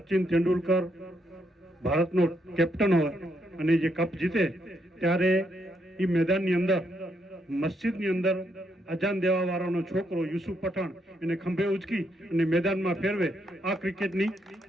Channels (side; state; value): both; normal; correlation 0.76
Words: તેંડુલકર ભારતનો કેપ્ટન હોય અને જે કપ જીતે ત્યારે એ મેદાનની અંદર મસ્જિદની અંદર અજાન દેવા વાળાનો છોકરો યુસુફ પઠાણ એને ખંભે ઉચકી અને મેદાનમાં ફેરવે. આ ક્રિકેટની